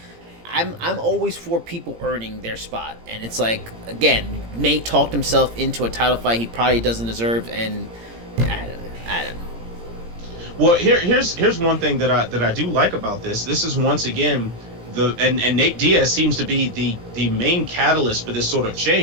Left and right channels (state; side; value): late; left; 17 ms